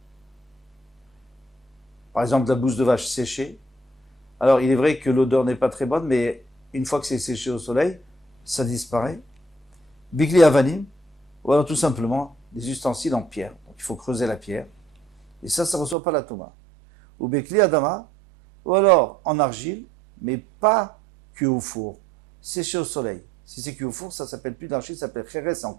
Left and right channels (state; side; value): drops out; left; at 16.0 s